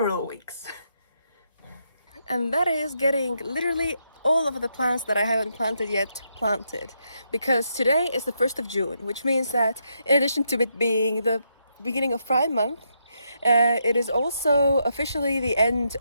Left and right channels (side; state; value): both; inverted; correlation -0.79